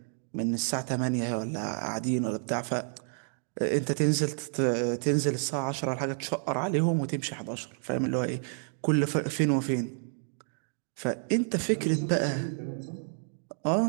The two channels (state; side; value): silent; left; 58 dB below the other